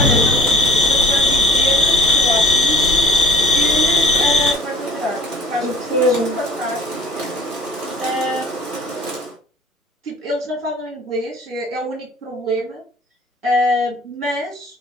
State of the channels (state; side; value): normal; both; correlation 0.51